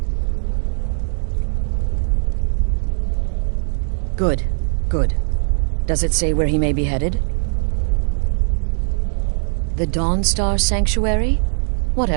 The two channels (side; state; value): left; silent; digital silence